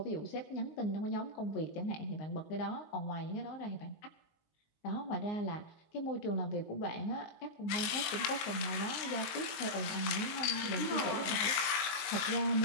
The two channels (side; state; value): right; late; 20 ms